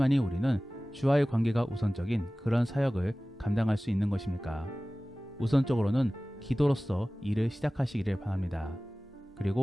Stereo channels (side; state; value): both; normal; correlation 0.97